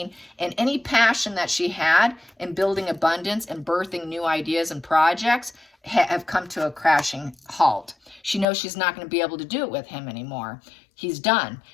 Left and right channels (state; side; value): drops out; right; at 8.5 s